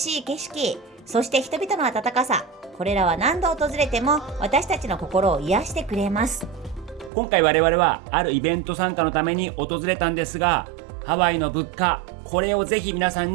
い景色、そして人々の温かさ、これらは何度訪れても私たちの心を癒してくれます。今回我々はあるイベント参加のために訪れたんですが、ハワイの物価、これをぜひ皆さ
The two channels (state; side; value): drops out; left; at 7.1 s